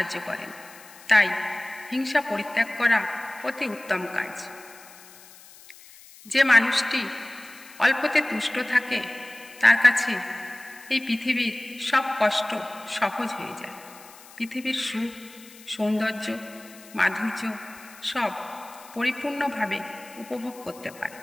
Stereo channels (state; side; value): noise; left; hiss, 21 dB below the sound